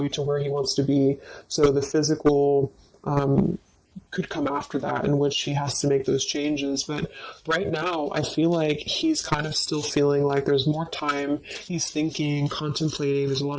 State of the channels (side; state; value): both; identical; correlation 1.00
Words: to where he wants to be. So the physical could come after that, in which he has to make those changes. But right now, I feel like he's kind of still feeling like there's more time. He's thinking, contemplating. There's a